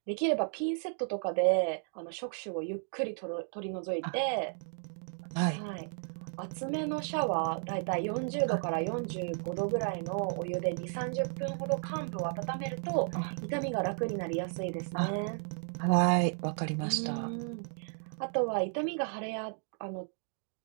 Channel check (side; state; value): left; silent; 55 dB below the other